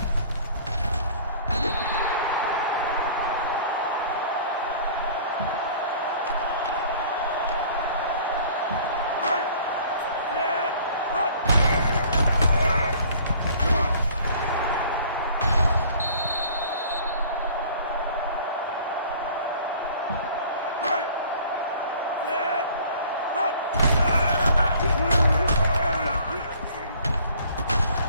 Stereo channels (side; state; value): both; inverted; correlation -0.51